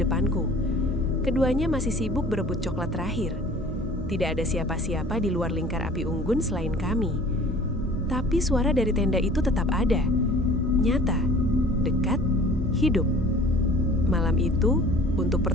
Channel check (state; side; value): normal; both; correlation 0.48